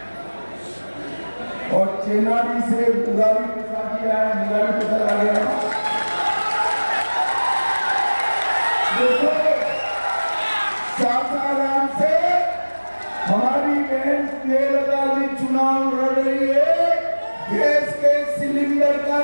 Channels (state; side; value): inverted; both; correlation -1.00